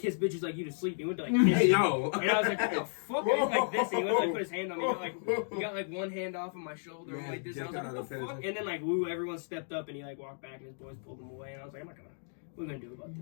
bitches like you to sleep. And he went to like kiss me. Yo. And I was like, what the fuck? And he went like this. And he went to like put his hand on me. He got like one hand off of my shoulder like this. And I was like, what the fuck? And then like everyone stepped up and he like walked back and his boys pulled him away. And I was like, what are we gonna do about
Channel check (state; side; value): silent; right; digital silence